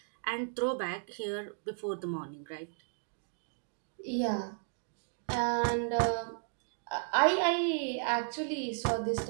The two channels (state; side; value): silent; left; digital silence